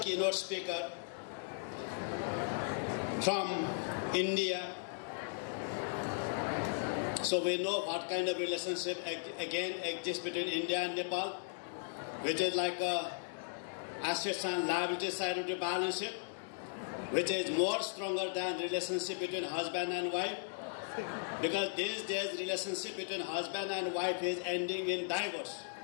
keynote speaker from India. So we know what kind of relationship again exists between India and Nepal, which is like a assets and liability side of the balance sheet, which is more stronger than relationship between husband and wife, because these days relationship between husband and wife is ending in divorce.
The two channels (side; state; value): right; silent; digital silence